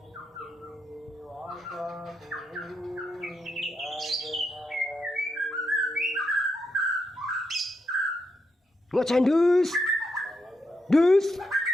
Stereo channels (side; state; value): both; normal; correlation 0.82